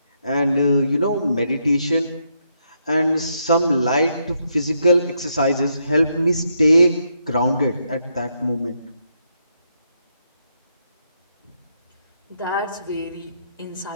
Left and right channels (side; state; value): both; inverted; correlation -0.78